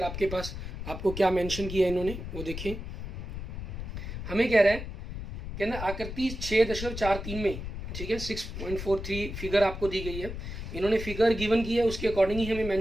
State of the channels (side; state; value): left; noise; rumble, 7 dB below the sound